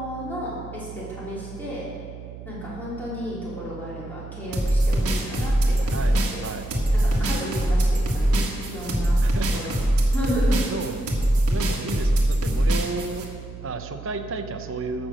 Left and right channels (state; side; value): noise; right; hum, 13 dB below the sound